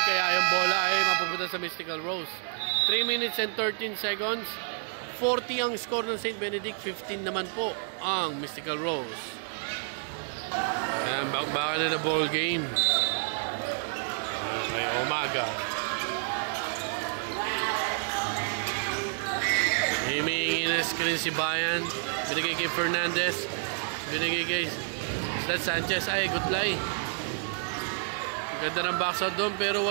kaya yung bola ay mapupunta sa Mystical Rose. 3 minutes and 13 seconds. 40 ang score ng St. Benedict, 15 naman po ang Mystical Rose. Ayan, bakbakan na ball game. May umaga. Himingi na screen si Bayan. Binigay kay Fernandez. Binigay kay Sanchez. Ay, good play. Ganda ng box out doon pero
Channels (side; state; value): left; silent; digital silence